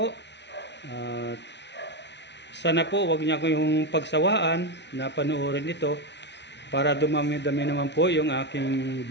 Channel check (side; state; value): right; late; 0.51 ms